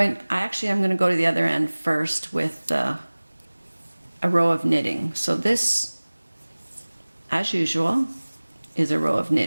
to go to the other end first with a row of knitting. So this, as usual, is a row of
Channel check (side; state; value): both; inverted; correlation -1.00